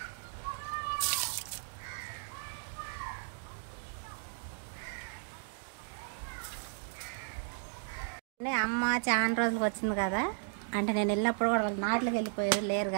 అమ్మ చాలా రోజులకు వచ్చింది కదా. అంటే నేను వెళ్ళినప్పుడు కూడా వాళ్ళు నాట్లకి వెళ్ళిపోయారు, లేరు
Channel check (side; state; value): left; silent; digital silence